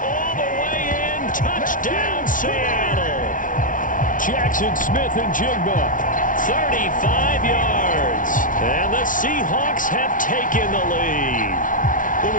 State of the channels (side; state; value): right; late; 0.38 ms